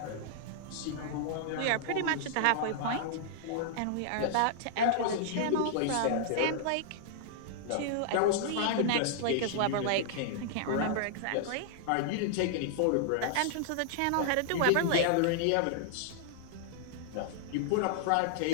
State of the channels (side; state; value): both; different; correlation -0.01